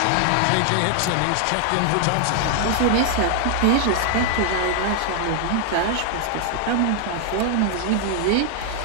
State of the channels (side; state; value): both; different; correlation 0.00